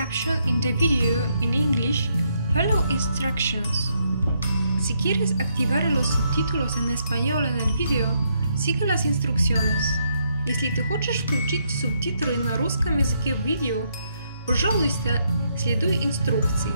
in the video in English, follow instructions. Si quieres activar los subtítulos en español en el video, sigue las instrucciones. Если ты хочешь включить субтитры на русском языке в видео, пожалуйста, следуй инструкции.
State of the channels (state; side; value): inverted; both; correlation -0.76